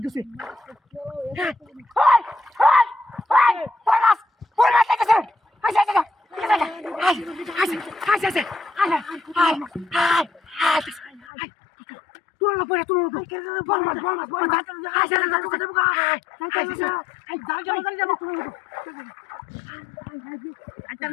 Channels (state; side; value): drops out; right; at 11.2 s